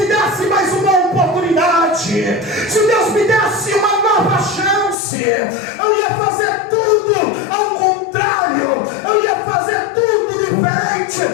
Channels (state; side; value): drops out; right; at 5.0 s